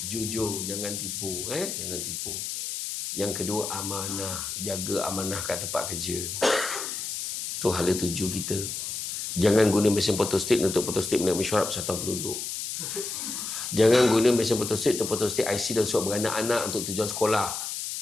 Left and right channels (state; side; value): noise; left; hiss, 5 dB below the sound